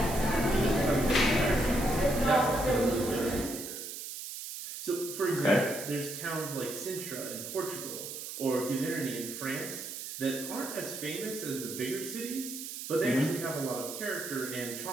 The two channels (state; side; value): noise; right; hiss, 8 dB below the sound